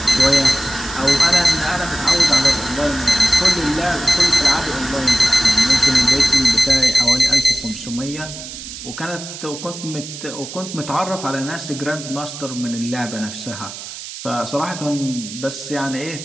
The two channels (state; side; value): noise; right; hiss, 11 dB below the sound